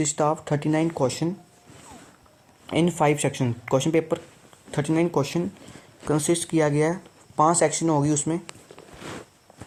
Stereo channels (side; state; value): both; identical; correlation 1.00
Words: of 39 question in 5 section. Question paper 39 question consist किया गया है, 5 सेक्शन होगी, उसमें